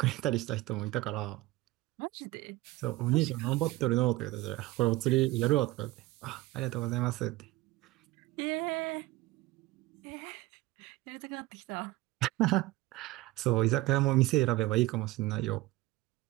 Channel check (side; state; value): left; quieter; 18.1 dB